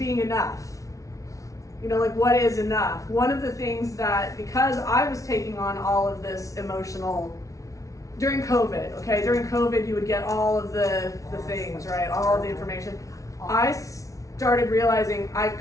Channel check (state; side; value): late; right; 0.16 ms